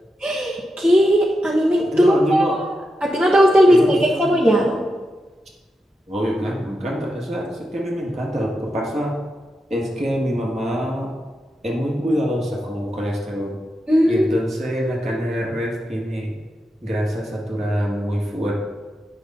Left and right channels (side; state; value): both; normal; correlation 0.87